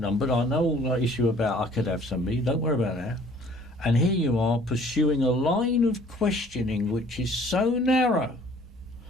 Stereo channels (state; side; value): normal; both; correlation 0.55